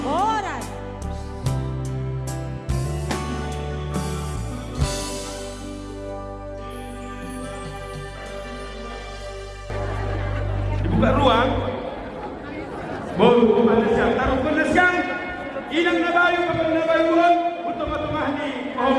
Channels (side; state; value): both; identical; correlation 1.00